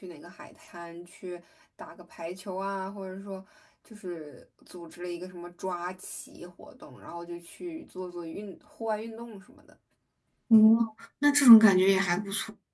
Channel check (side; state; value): both; identical; correlation 1.00